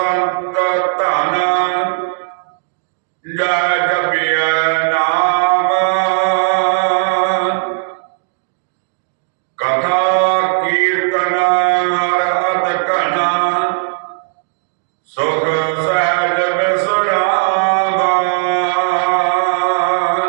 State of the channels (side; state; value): left; silent; digital silence